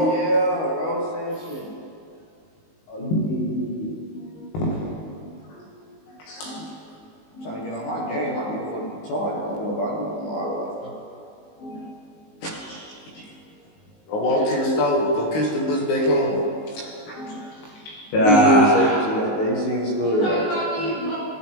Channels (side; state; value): right; late; 19 ms